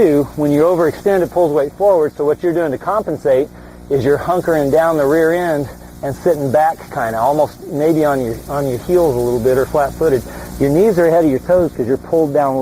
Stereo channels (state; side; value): identical; both; correlation 1.00